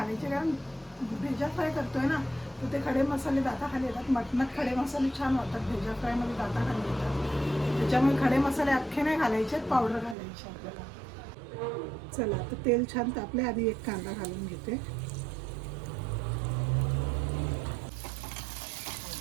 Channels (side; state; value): left; drops out; at 10.2 s